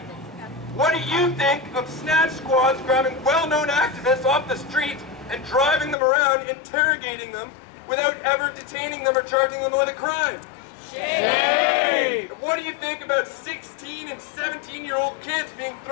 What do you think of snatch squads grabbing well-known activists off the street and driving them around, interrogating them without ever detaining them or charging them with a crime? Shame! What do you think about 16 and 17-year-old kids being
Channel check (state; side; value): drops out; right; at 6.0 s